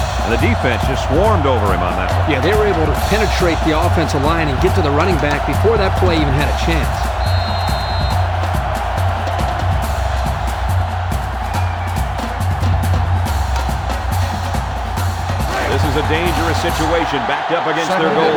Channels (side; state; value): both; identical; correlation 1.00